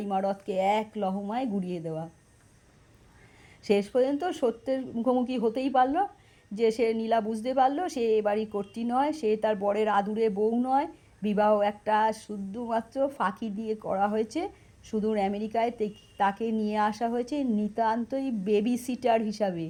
ইমারতকে এক লহমায় গুড়িয়ে দেওয়া। শেষ পর্যন্ত সত্যের মুখোমুখি হতেই পারল। যে সে নীলা বুঝতে পারলো সে এ বাড়ির কর্ত্রী নয়, সে তার বরের আদুরে বউ নয়। বিবাহ একটা শুধুমাত্র ফাঁকি দিয়ে করা হয়েছে। সুদূর আমেরিকায় তাকে নিয়ে আসা হয়েছে নিতান্তই বেবি সিটার হিসাবে।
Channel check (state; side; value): identical; both; correlation 1.00